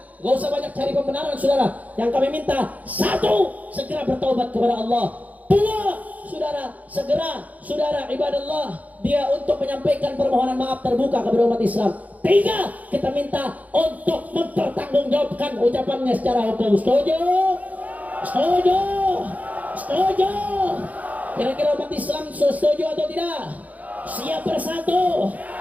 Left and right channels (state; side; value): late; left; 0.076 ms